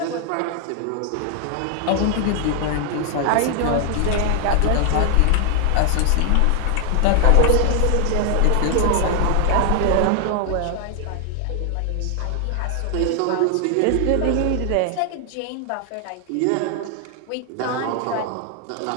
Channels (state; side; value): different; both; correlation 0.00